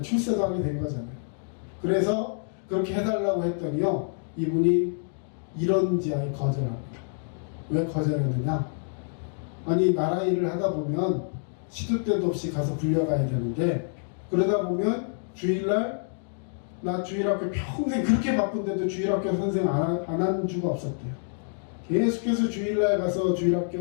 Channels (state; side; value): silent; right; digital silence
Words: 출세도 하게 된 거잖아요. 그래서 그렇게 해달라고 했더니요, 이분이 이런지하에 거절합니다. 왜 거절했느냐? 아니, 나라 일을 하다 보면 시도 때도 없이 가서 불려가야 되는데, 그러다 보면 주일날, 나 주일학교 평생 그렇게 바쁜데도 주일학교 선생 안 한 주가 없었대요. 계속해서 주일날 가서